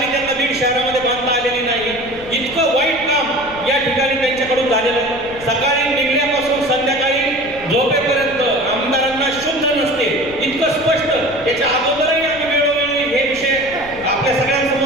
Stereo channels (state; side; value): noise; left; rumble, 18 dB below the sound